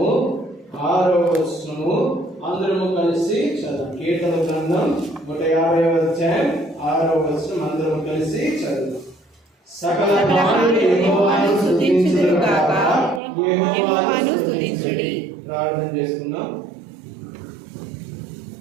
6వ వచనము అందరము కలిసి చదువు. కీర్తన గ్రంథం 150వ అధ్యాయం 6వ వచనం అందరము కలిసి చదువు. సకల మానవులు యెహోవాను స్తుతించుదురు గాక, యెహోవాను స్తుతించుడి. ప్రార్థన చేసుకుందాం.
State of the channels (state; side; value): drops out; left; at 13.2 s